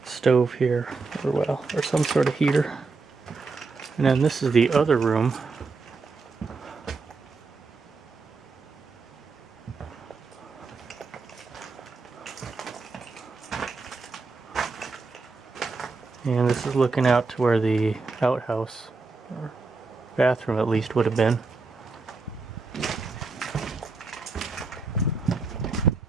Stove here, or some sort of heater. And then this is the other room. And this is looking out to where the outhouse, or bathroom at least, would have been.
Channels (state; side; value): quieter; left; 4.1 dB